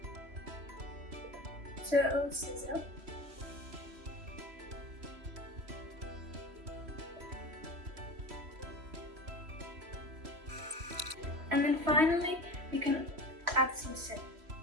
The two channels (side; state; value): left; late; 3.1 ms